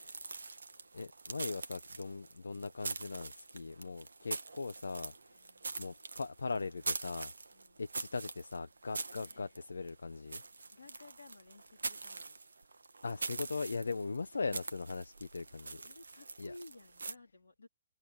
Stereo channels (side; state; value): both; inverted; correlation -0.91